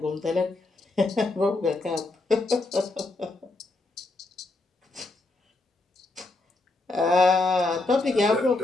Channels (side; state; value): right; quieter; 3.1 dB